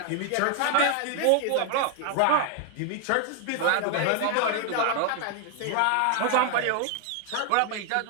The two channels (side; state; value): both; different; correlation 0.00